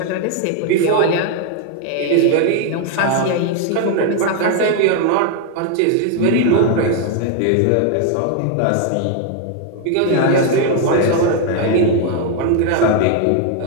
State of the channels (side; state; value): both; different; correlation 0.01